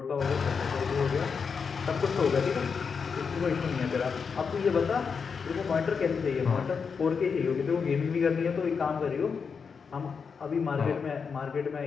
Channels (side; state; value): right; quieter; 5.8 dB